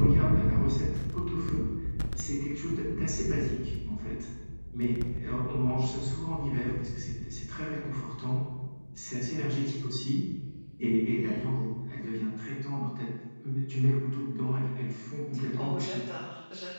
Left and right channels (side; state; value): both; inverted; correlation -1.00